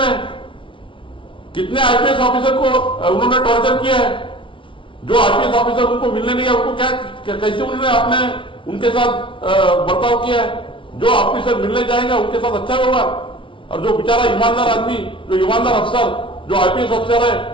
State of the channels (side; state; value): right; late; 0.25 ms